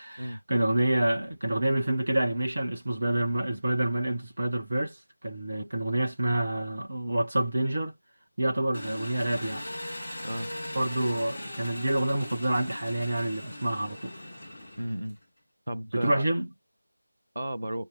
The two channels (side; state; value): both; inverted; correlation -0.95